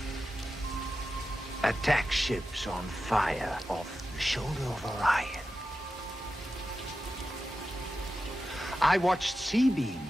Attack ships on fire off the shoulder of Orion. I watched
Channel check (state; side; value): normal; both; correlation 0.92